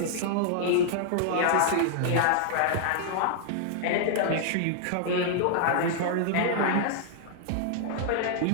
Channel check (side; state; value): both; different; correlation -0.01